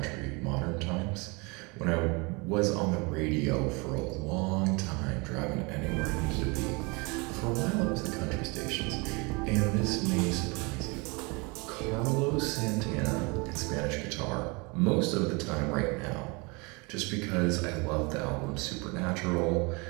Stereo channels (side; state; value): left; quieter; 28.5 dB